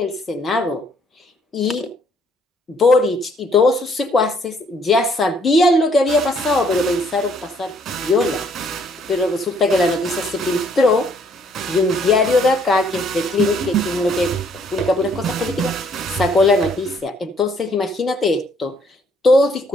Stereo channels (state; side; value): normal; both; correlation 0.65